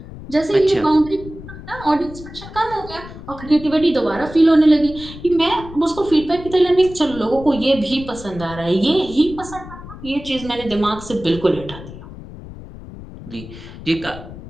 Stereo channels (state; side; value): noise; left; rumble, 14 dB below the sound